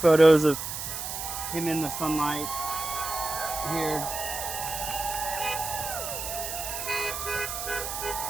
of him in the sunlight here.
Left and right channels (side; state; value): right; noise; hiss, 5 dB below the sound